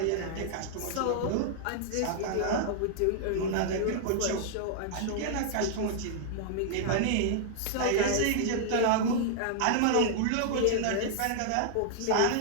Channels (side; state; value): both; different; correlation -0.01